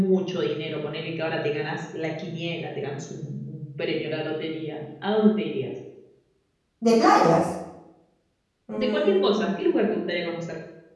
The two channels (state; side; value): identical; both; correlation 1.00